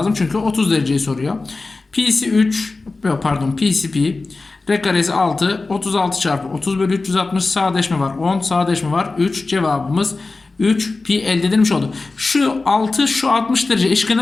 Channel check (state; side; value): quieter; right; 3.6 dB